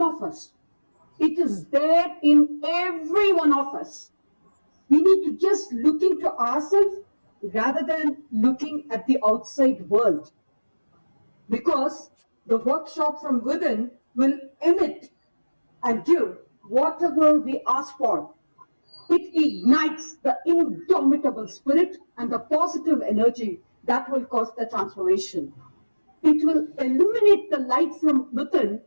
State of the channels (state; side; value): inverted; both; correlation -1.00